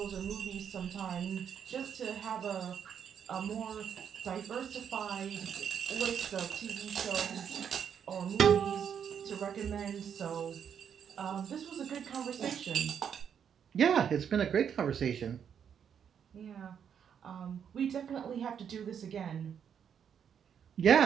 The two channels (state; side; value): quieter; left; 8.0 dB